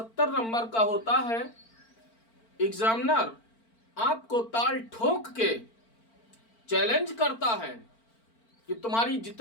नंबर का होता है। एग्जामिनर आपको ताल ठोक के चैलेंज करता है कि तुम्हारी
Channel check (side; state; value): right; late; 4.4 ms